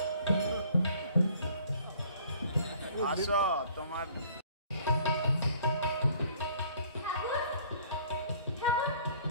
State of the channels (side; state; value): both; inverted; correlation -0.56